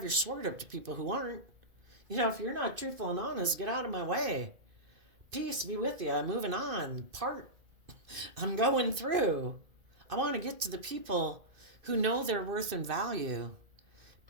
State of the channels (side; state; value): left; late; 2.5 ms